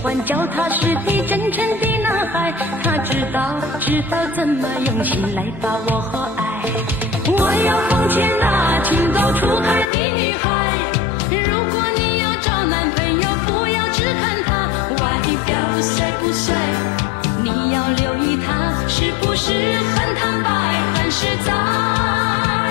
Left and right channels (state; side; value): drops out; right; at 9.9 s